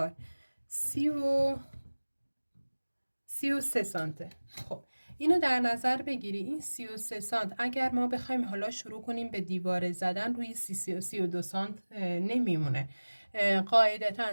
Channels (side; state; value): both; inverted; correlation -1.00